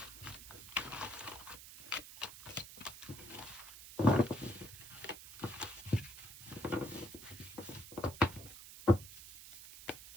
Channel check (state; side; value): noise; right; hiss, 14 dB below the sound